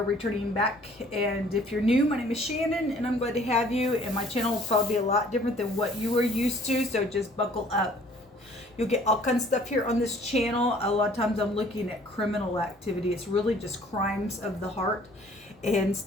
returning back, and if you're new, my name is Shannon and I'm glad to have you, and my channel will probably be a lot different than what you are used to, so just buckle up. You'll get all kinds of stuff here on this channel. A lot of times I'm looking at criminal activity. It's really just crimes of the heart and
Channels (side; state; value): both; normal; correlation 0.56